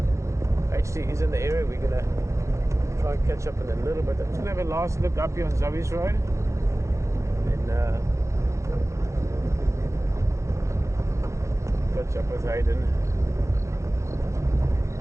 HT is in the area. We're gonna try and catch up in a little bit. I'm just gonna have a last look up here on Zoe's Road. Then catch up with Hayden.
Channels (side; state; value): left; late; 0.14 ms